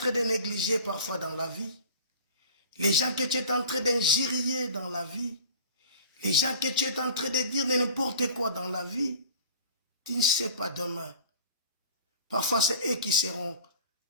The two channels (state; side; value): inverted; both; correlation -0.43